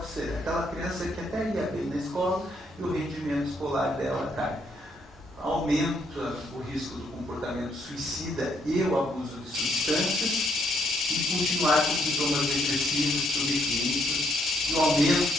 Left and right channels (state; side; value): normal; both; correlation 0.71